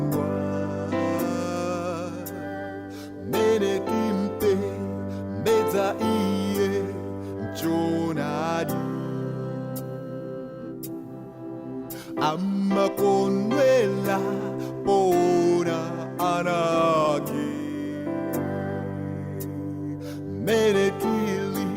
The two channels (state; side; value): identical; both; correlation 1.00